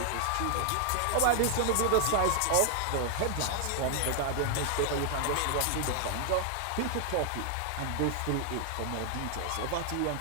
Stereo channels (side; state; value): both; different; correlation 0.00